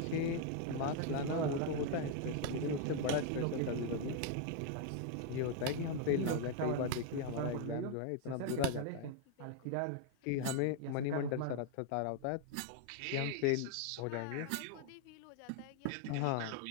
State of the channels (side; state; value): both; different; correlation 0.00